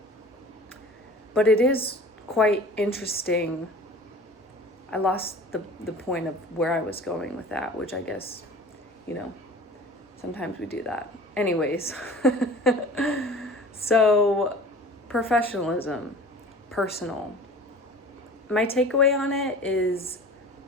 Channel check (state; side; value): normal; both; correlation 0.42